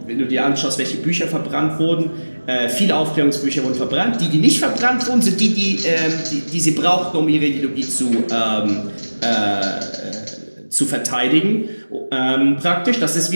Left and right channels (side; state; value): both; inverted; correlation -1.00